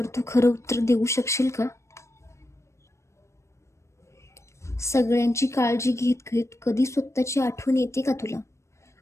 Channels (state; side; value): late; right; 0.14 ms